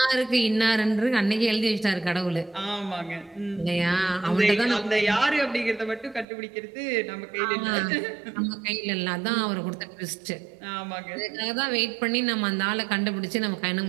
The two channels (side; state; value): left; drops out; at 6.2 s